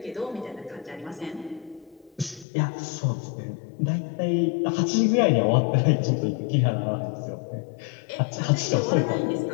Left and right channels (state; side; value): drops out; right; at 2.5 s